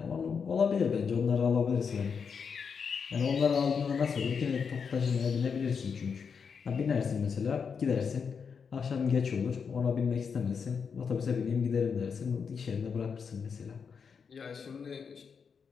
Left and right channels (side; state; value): right; quieter; 6.1 dB